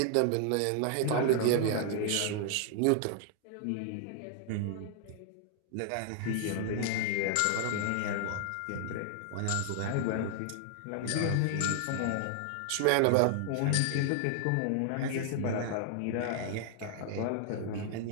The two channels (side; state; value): both; different; correlation 0.00